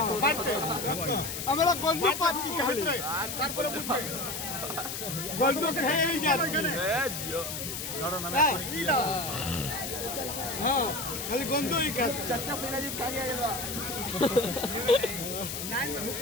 আমরা গল্প পাচ্ছি তারপরে গল্প খেয়েই যাচ্ছি। হ্যাঁ খালি গন্ধই খাচ্ছে। চাচা ফিরাজি কাগে গেল।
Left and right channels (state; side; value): noise; left; hiss, 5 dB below the sound